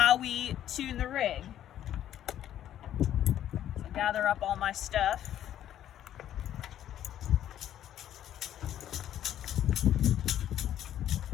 we tune the rig. So gather up all my stuff.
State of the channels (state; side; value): quieter; right; 11.3 dB